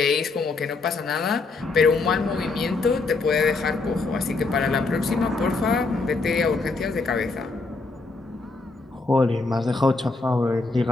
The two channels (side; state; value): right; quieter; 3.8 dB